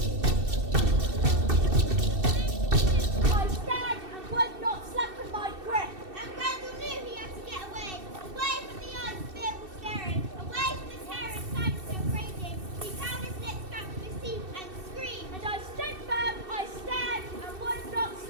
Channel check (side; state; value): left; late; 2.6 ms